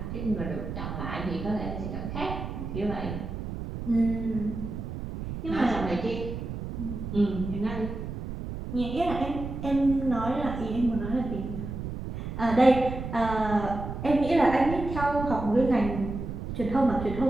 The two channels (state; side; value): noise; right; rumble, 7 dB below the sound